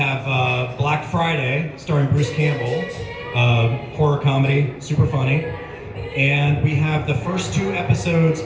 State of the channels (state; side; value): identical; both; correlation 1.00